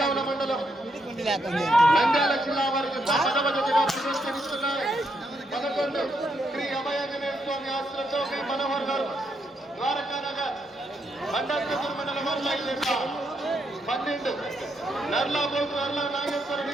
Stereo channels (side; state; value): both; normal; correlation 0.78